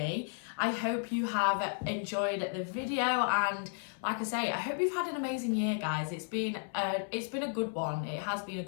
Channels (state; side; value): silent; right; 55 dB below the other